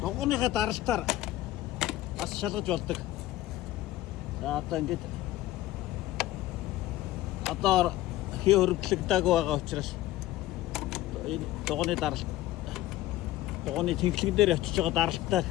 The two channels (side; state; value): right; quieter; 15.5 dB